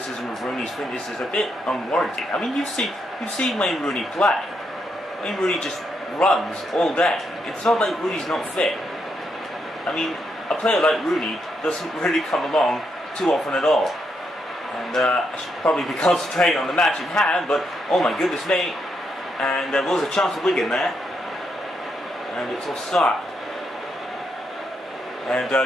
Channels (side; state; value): both; normal; correlation 0.79